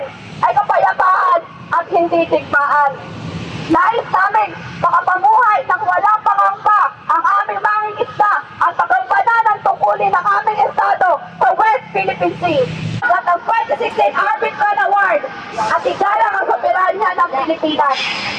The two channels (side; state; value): both; identical; correlation 1.00